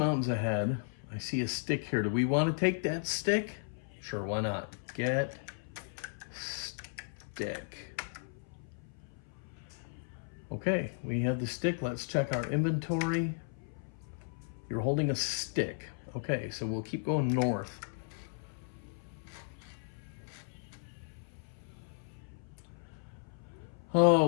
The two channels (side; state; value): right; silent; 54 dB below the other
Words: ahead. I see a stick here. Do we want to take that stick? Sure, why not? Get stick. Okay, we have the stick. Let's check our inventory. You're holding a stick. Okay, so we'll keep going north. Oh,